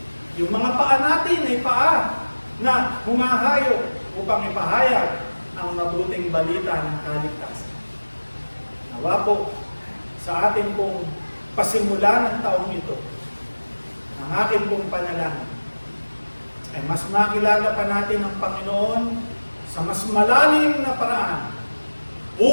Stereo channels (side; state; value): both; inverted; correlation -1.00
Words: Yung mga paa natin ay paa na humahayo upang ipahayag ang mabuting balita ng kaligtasan. Nawa po sa ating pong pasimula ng taong ito, ang aking pong panalangin ay mas makilala pa natin ang Panginoon sa mas malalim na paraan